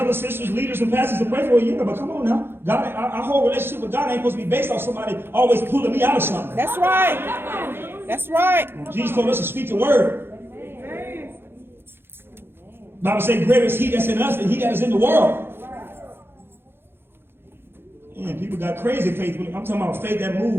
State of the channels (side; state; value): left; late; 0.11 ms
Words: sisters, leaders, and pastors to pray for you. But come on now. God, our whole relationship with God ain't supposed to be based on somebody always pulling me out of something. That's right. That's right. Jesus told us to speak the word. The Bible says, greater is he that's in us than he that is in the world. Man, people got crazy faith. I'm talking about faith that